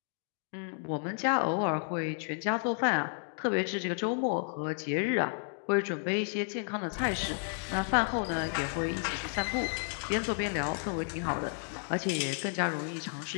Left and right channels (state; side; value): silent; right; 56 dB below the other